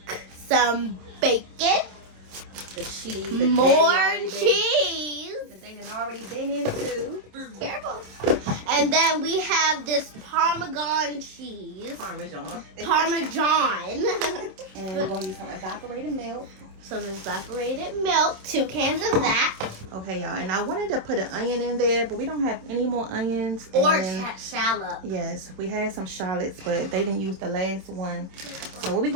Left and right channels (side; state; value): left; late; 27 ms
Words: some bacon, The cheese. more cheese. That they done already been into. Careful. And then we have this Parmesan cheese. Parmesan. Parmesan. And we're going to use some evaporated milk. Some evaporated milk, 2 cans of that. Okay, y'all. And I wanted to put an onion in there, but we don't have any more onions. Or And shallot. yes, we had some shallots, but they didn't use the last one. So what we're